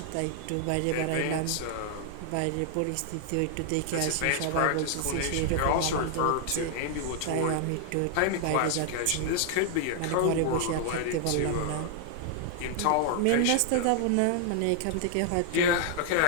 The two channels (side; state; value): both; different; correlation 0.00